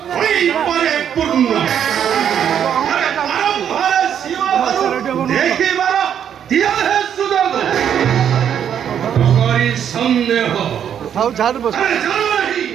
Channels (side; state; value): left; quieter; 8.9 dB